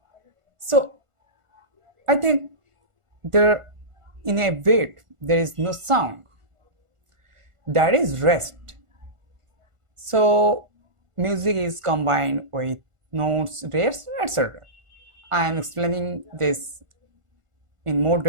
so I think there in a beat there is no sound. That is rest. So music is combined with notes, rests, etc. I am explaining this in more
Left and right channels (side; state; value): left; late; 1.4 ms